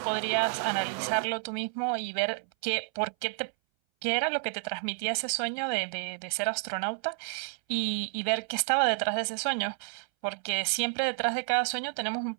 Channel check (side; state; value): left; silent; 58 dB below the other